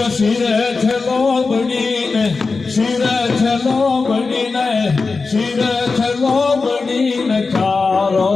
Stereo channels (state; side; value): quieter; right; 4.2 dB